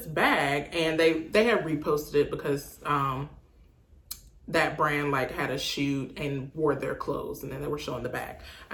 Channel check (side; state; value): both; identical; correlation 1.00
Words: bag? And they had reposted it because that brand like had a shoot and wore their clothes and then they were showing the bag.